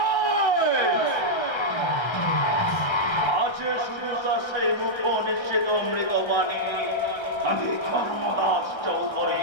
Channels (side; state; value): right; late; 1.3 ms